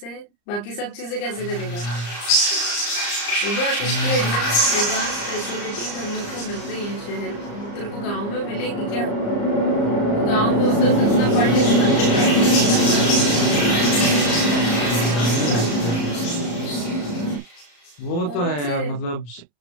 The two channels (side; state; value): right; late; 34 ms